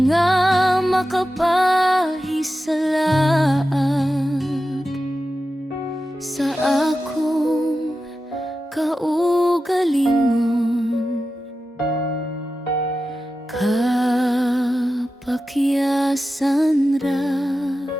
nga makapahisalaag sa akong kaugalingon. Kapakyasan ra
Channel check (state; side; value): normal; both; correlation 0.92